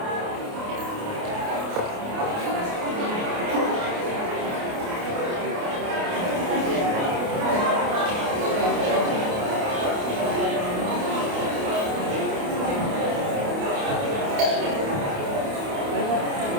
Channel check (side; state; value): left; late; 28 ms